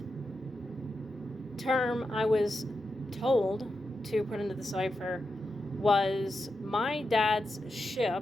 term I was told to put into the cipher was my dad's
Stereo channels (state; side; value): normal; both; correlation 0.88